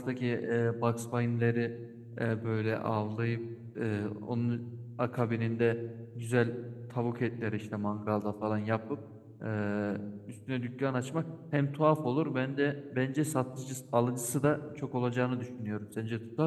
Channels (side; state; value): both; identical; correlation 1.00